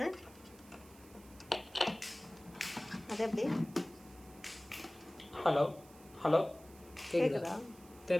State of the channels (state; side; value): noise; right; hiss, 23 dB below the sound